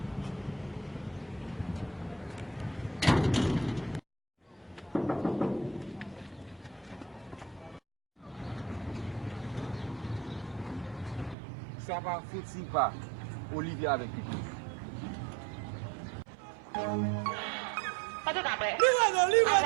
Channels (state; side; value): drops out; left; at 11.4 s